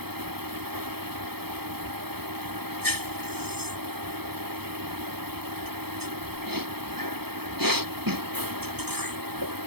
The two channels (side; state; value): left; late; 0.97 ms